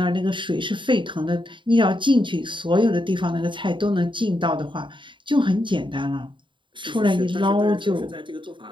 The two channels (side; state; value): left; late; 0.24 ms